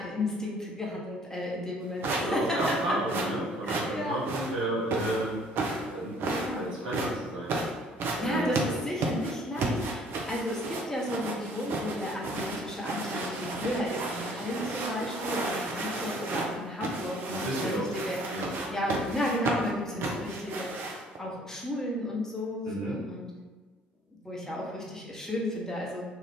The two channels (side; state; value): both; normal; correlation 0.58